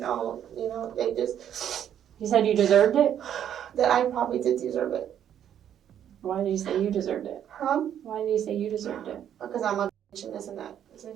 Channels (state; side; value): quieter; left; 9.8 dB